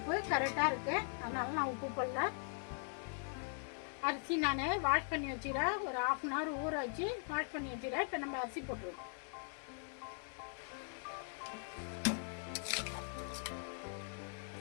கரெக்டாக இருக்குது, அதனால நான் உப்பு போடல. அரிசி நான் வாஷ் பண்ணி வச்சுக்கிறேன். ஒரு 1/2 hour ஊற வச்சு வாஷ் பண்ணி வச்சுக்கிறேன். இப்போ நம்ம அரிசி போட்டுருவோம்.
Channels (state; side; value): silent; right; 51 dB below the other